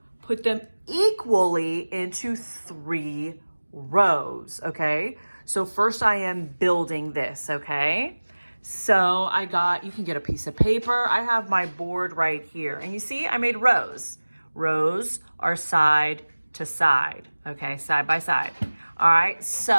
put them equally into 3 rows, okay? So first I am building this, okay? So you can get a piece of paper. I have my board right here. And you see, I made rows. Rows are side to side, okay? Side by side. All right,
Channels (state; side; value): inverted; both; correlation -1.00